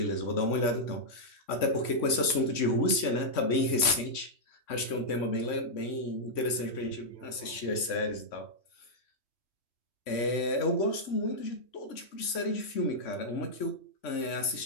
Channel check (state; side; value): late; right; 3.5 ms